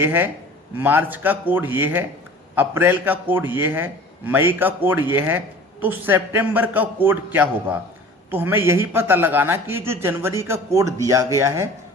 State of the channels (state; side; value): normal; both; correlation 0.44